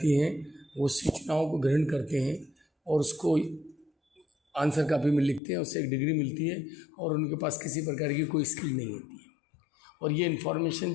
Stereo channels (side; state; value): right; drops out; at 5.4 s